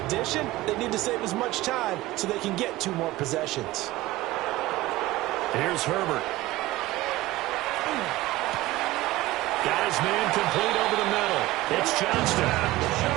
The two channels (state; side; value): quieter; left; 17.7 dB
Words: addition, they need to save as much time so they can get 2 more possessions. Here's Herbert. Got his man complete over the middle. It's Johnston.